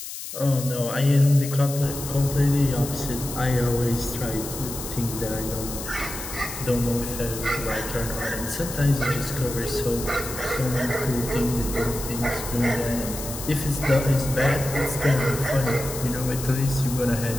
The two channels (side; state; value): left; noise; hiss, 9 dB below the sound